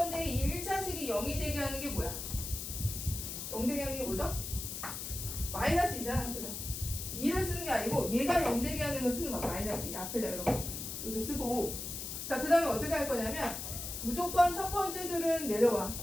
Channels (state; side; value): noise; left; hiss, 6 dB below the sound